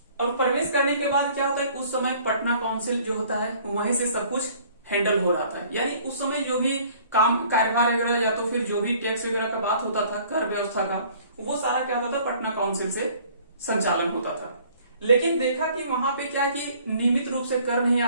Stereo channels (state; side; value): inverted; both; correlation -0.55